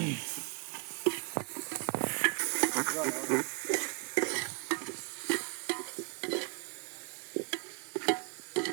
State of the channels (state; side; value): quieter; left; 34.9 dB